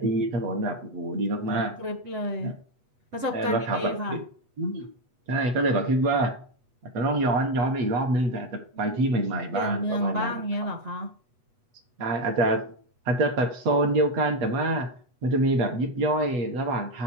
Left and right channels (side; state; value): left; late; 8.1 ms